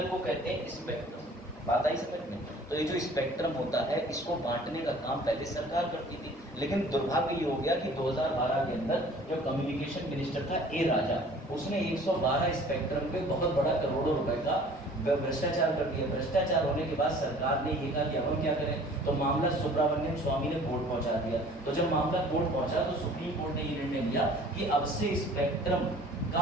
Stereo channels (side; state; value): both; normal; correlation 0.50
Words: को कहते हैं स्पेक्ट्रम। बात आई समझ में? तो ये जो स्पेक्ट्रम होता है, इसको बांटने का काम पहले सरकार करती थी, लेकिन दुर्भाग्य ये हो गया कि 2012 के अंदर जो कम्युनिकेशन मिनिस्टर था ए राजा, उसने 112 स्पेक्ट्रम पे बहुत बड़ा करोड़ों रुपए का भ्रष्टाचार कर दिया। भ्रष्टाचार होने के बाद सरकार ने ये कहा कि अब हम क्या करें, तो मामला सुब्रमण्यम स्वामी ने कोर्ट पहुंचा दिया। तो जब मामला कोर्ट पहुंचा तो सुप्रीम कोर्ट ने ये निर्णय लिया कि अब से स्पेक्ट्रम